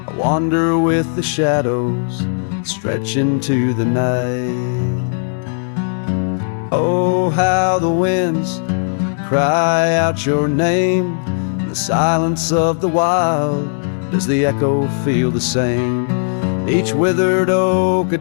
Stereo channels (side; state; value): right; silent; digital silence